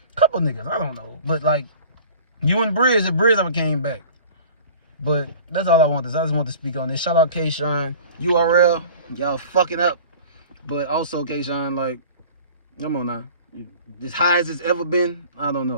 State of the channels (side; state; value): both; inverted; correlation -0.44